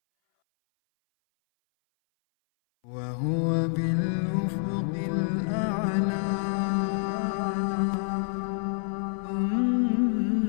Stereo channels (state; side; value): silent; right; 58 dB below the other